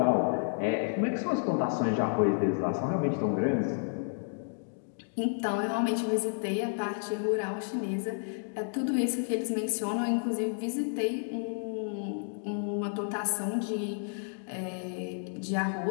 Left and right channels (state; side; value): silent; right; digital silence